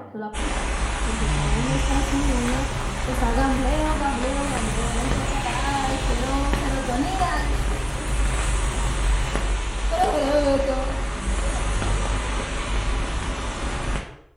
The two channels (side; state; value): both; identical; correlation 1.00